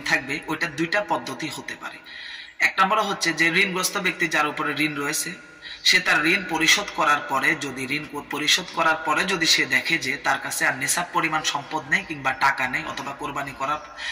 থাকবে, ওইটা দুইটা পদ্ধতি হতে পারে। এক নম্বর হচ্ছে যে ঋণগ্রস্ত ব্যক্তি যার উপরে ঋণ রয়েছে, সে তার ঋণ পরিশোধ করার পরে যদি সে দেখে যে তার কাছে আর নেশাব পরিমাণ সম্পদ নেই কিংবা টাকা নেই, অথবা কোরবানি করার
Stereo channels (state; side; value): identical; both; correlation 1.00